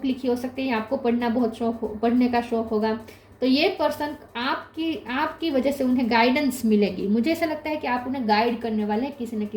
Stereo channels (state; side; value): identical; both; correlation 1.00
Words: लिखी हो सकती है, या आपको पढ़ने का शौक होगा। तो ये पर्सन आपकी वजह से उन्हें गाइडेंस मिलेगी। मुझे ऐसा लगता है कि आप उन्हें गाइड करने वाले हैं किसी न